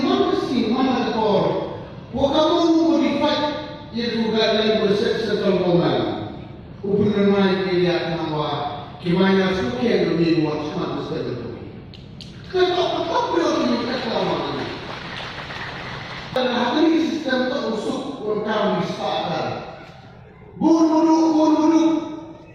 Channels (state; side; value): identical; both; correlation 1.00